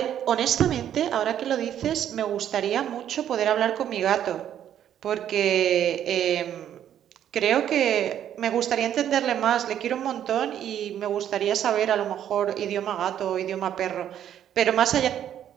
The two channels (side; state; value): left; quieter; 10.3 dB